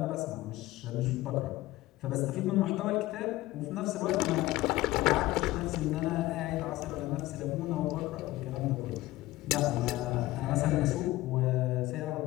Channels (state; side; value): quieter; right; 17.5 dB